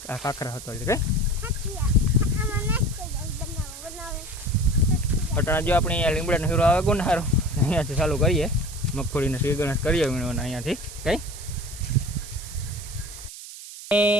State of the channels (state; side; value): noise; right; hiss, 13 dB below the sound